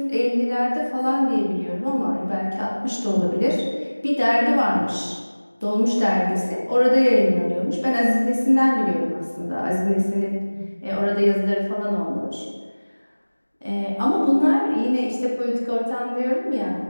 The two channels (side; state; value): both; inverted; correlation -1.00